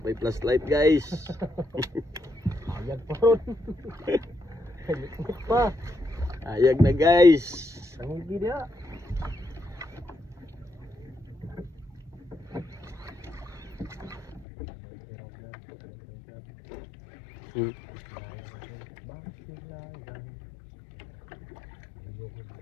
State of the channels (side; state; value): right; drops out; at 14.5 s